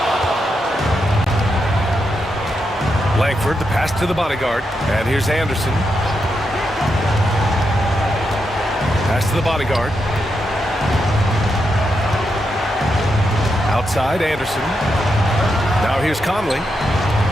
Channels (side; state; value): both; normal; correlation 0.84